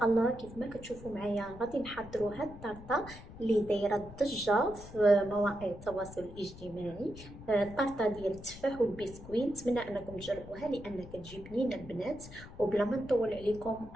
الله كيف ما كتشوفوا معايا غادي نحضروا هاد الطرطة اللي دايرة الضجة في مواقع التواصل الاجتماعي. الطرطة ديال التفاح والبسكويت، نتمنى أنكم تجربوها لأنها كتجي بنينة البنات. وبلا ما نطول عليكم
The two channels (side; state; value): left; noise; rumble, 16 dB below the sound